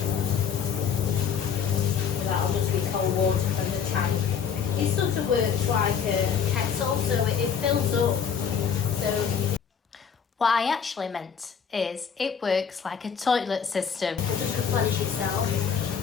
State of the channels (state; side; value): quieter; right; 7.1 dB